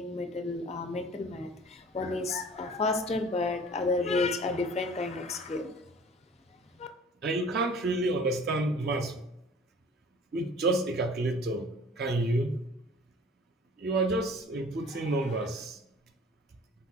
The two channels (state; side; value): normal; both; correlation 0.47